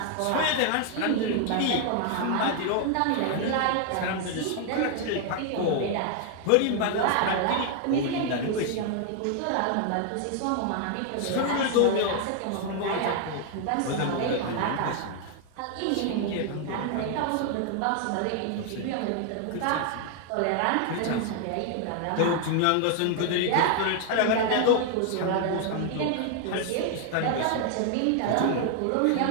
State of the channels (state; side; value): different; both; correlation 0.00